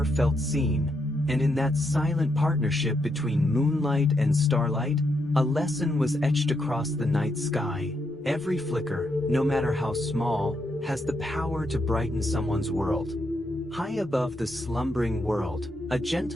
felt seen, and in that silent partnership between moonlight and starlight, a lesson was etched across the night sky. Every flicker, no matter how small, has the power to brighten someone's world. High above the slumbering world, a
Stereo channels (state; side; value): normal; both; correlation 0.80